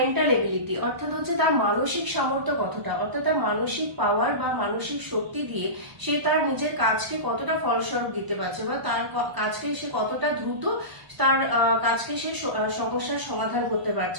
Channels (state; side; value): late; left; 1.0 ms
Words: এবিলিটি, অর্থাৎ হচ্ছে তার মানসিক সামর্থ্য কতটা, অর্থাৎ তার মানসিক পাওয়ার বা মানসিক শক্তি দিয়ে সে তার নিজের কাজকে কতটা ফলস্বরূপ দিতে পারছে বা তার কাজকে সে কতটা দ্রুত তার কাজকে সে সমস্যার সমাধান করতে